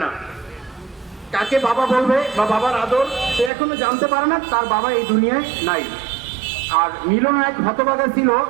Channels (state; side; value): drops out; left; at 3.5 s